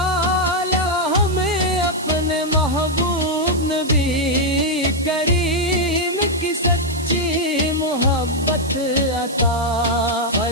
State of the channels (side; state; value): right; noise; hiss, 15 dB below the sound